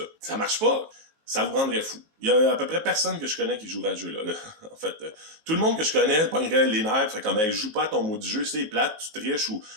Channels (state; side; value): late; left; 19 ms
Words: Ça marche pas. Ça vous rendrait fou. Il y a à peu près personne que je connais qui jouera à ce jeu-là. En fait, tout le monde que je connais pognerait les nerfs, fait comme, hey, joue pas à ton mot du jeu, c'est plate, tu triches ou